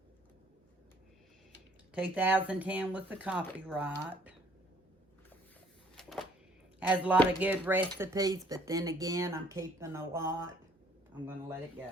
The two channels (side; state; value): both; normal; correlation 0.60